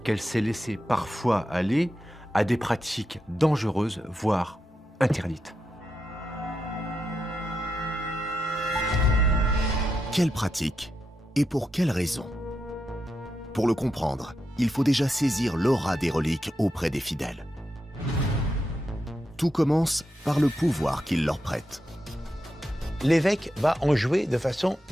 qu'elle s'est laissée parfois aller à des pratiques dangereuses, voire interdites. Quelles pratiques et pour quelles raisons? Pour le comprendre, il faut déjà saisir l'aura des reliques auprès des fidèles. Tout commence par le pouvoir qu'ils leur prêtent. L'évêque va en jouer de façon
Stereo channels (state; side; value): normal; both; correlation 0.86